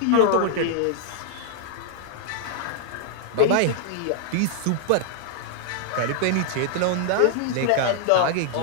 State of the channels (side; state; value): both; different; correlation -0.01